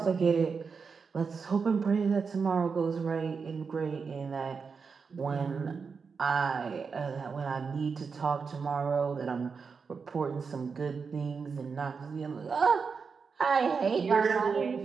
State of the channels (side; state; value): left; quieter; 5.4 dB